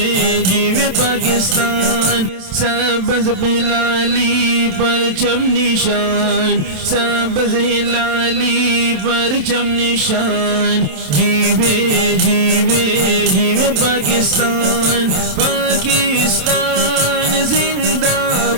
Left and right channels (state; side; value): late; left; 27 ms